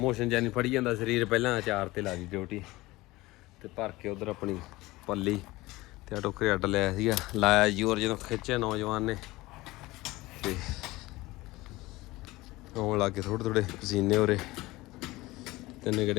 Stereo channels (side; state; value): right; quieter; 19.9 dB